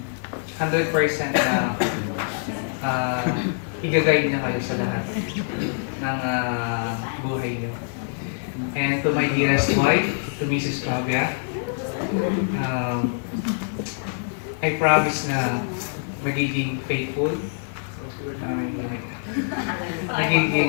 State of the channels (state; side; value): silent; right; digital silence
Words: 100% na i-guide niya kayo sa lahat ng buhay niyo. And to my dearest wife, to Mrs. Fabia, I promise na magiging faithful,